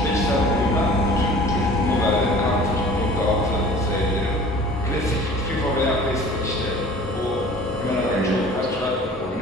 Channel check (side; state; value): both; normal; correlation 0.46